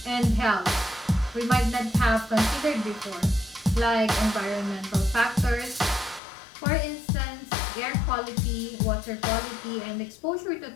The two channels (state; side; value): drops out; right; at 6.2 s